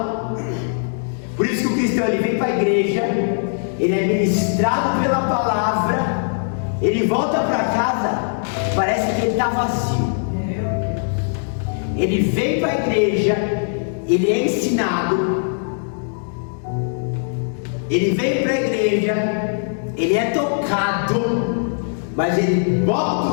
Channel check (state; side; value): silent; right; digital silence